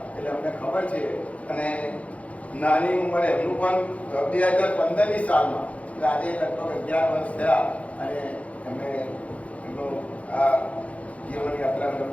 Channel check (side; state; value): right; late; 0.065 ms